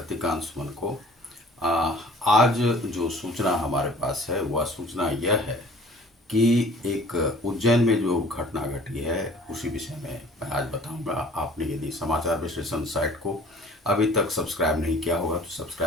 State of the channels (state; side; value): normal; both; correlation 0.50